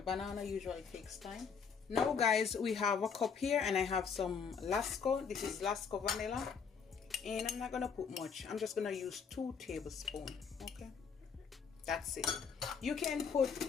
banana usually takes time. Now, guys, we have a cup here and I have some Lasco. This is Lasco vanilla. And I'm not going to put much. I'm just going to use 2 tablespoons, okay? That's it. You can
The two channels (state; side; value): quieter; right; 6.2 dB